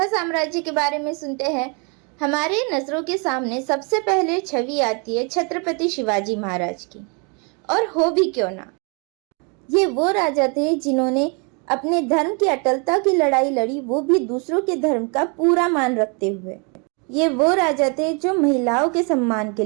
साम्राज्य के बारे में सुनते हैं, हमारे नजरों के सामने सबसे पहले छवि आती है छत्रपति शिवाजी महाराज की। और हो भी क्यों ना, ये वो राजा थे जिन्होंने अपने धर्म की अटलता की लड़ाई लड़ी, वो भी दूसरों के धर्म का पूरा मान रखते हुए। ये वो राजा थे जो महिलाओं के सम्मान के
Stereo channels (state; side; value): quieter; left; 34.4 dB